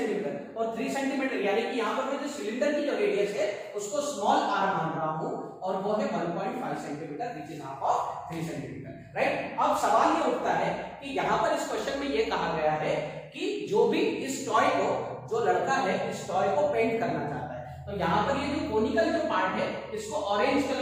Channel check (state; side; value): identical; both; correlation 1.00